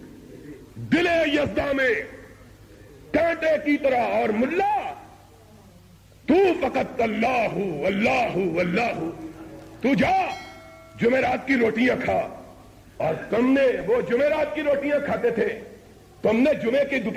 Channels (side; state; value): both; identical; correlation 1.00